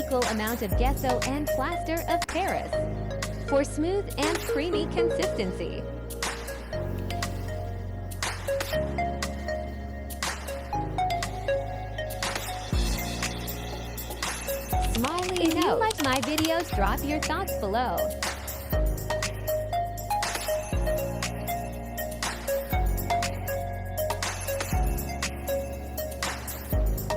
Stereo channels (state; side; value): identical; both; correlation 1.00